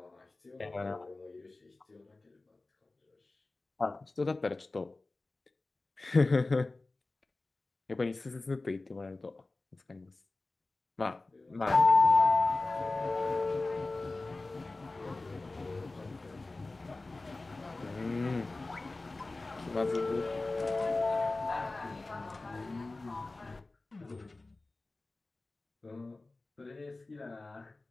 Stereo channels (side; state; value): right; quieter; 3.2 dB